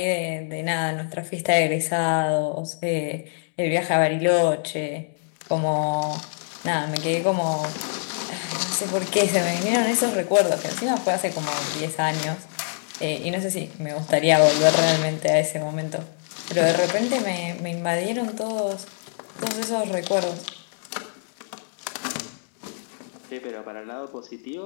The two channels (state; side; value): silent; right; digital silence